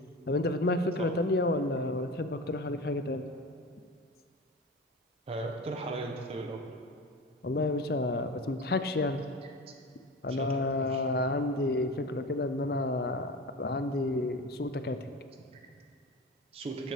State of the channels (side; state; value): both; normal; correlation 0.31